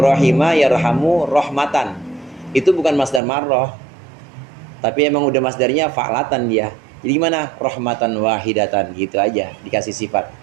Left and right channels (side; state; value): left; drops out; at 3.2 s